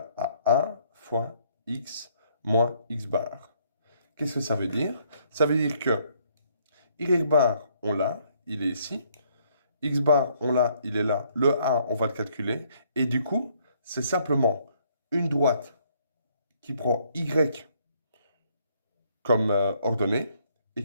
à 1 fois x moins x bar. Qu'est-ce que ça veut dire? Ça veut dire que y bar, on l'a, il est ici. X bar, on l'a, il est là. Le A, on va le calculer. Et du coup, c'est simplement une droite qui prend Y comme ordonnée et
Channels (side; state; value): both; inverted; correlation -0.67